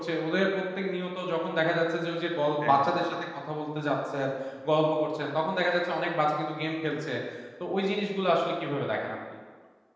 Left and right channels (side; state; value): both; identical; correlation 1.00